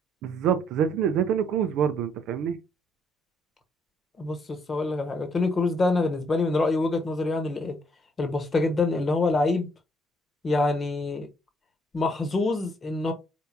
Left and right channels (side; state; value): both; normal; correlation 0.68